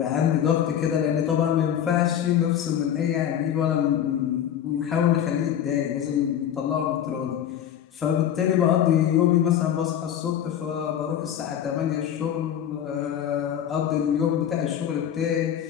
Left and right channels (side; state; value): right; quieter; 9.9 dB